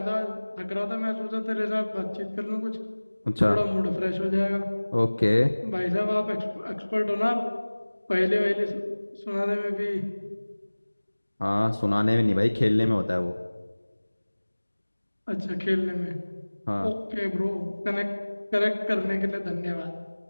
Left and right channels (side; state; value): both; inverted; correlation -1.00